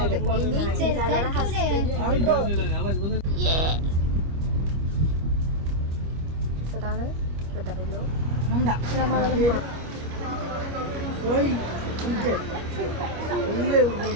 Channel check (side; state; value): left; late; 25 ms